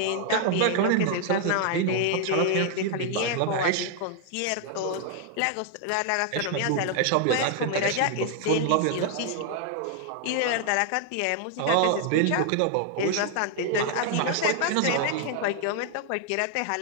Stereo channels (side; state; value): both; different; correlation 0.00